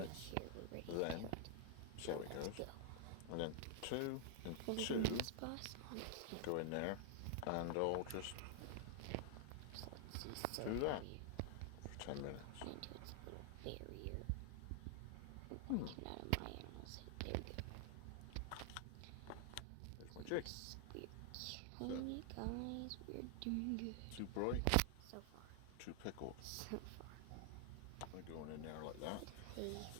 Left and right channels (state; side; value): different; both; correlation 0.00